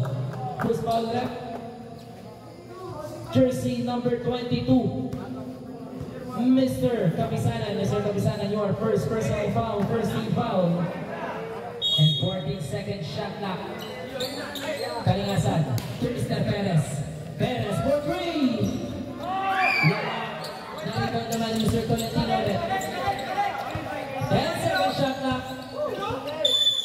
Who's foul left? Jersey number 22. Mr. Kapisanan. Mr. Kapisanan, your first personal foul. First team foul. And 14-second shot clock. Kalinasan. To Mr. Perez. Perez for 3. Nakikita naman Mr. Tolentino ulit. 10-second shot clock.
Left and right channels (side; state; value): both; identical; correlation 1.00